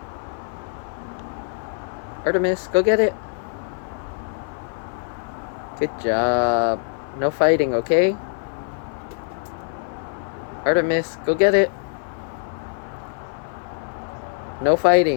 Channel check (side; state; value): right; silent; 56 dB below the other